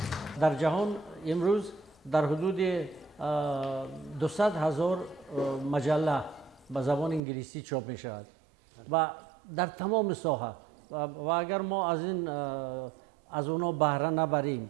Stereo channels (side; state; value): left; drops out; at 7.2 s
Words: در جهان امروز در حدود 200,000 مجله به زبان انگلیسی چاپ می شود و در تمام ساحه و اگر ما از اونا بهره